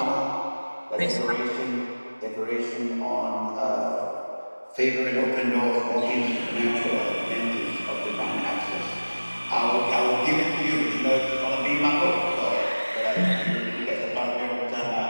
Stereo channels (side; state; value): both; inverted; correlation -1.00